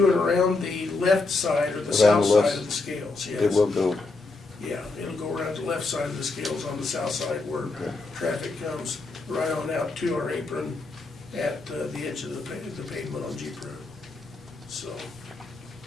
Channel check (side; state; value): right; quieter; 3.6 dB